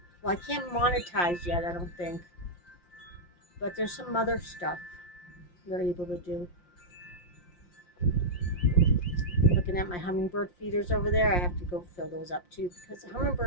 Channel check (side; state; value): right; late; 5.7 ms